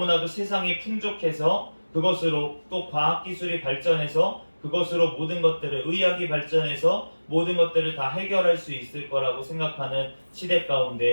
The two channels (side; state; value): both; inverted; correlation -1.00